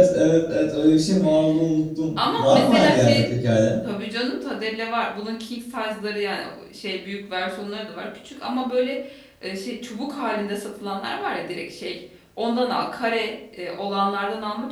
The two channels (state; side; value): identical; both; correlation 1.00